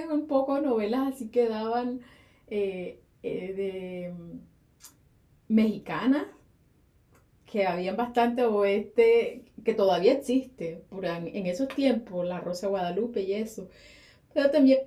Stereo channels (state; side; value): identical; both; correlation 1.00